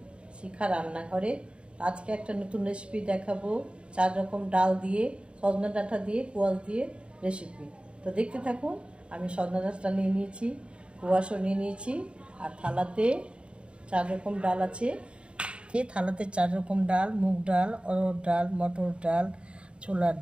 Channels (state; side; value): late; left; 0.056 ms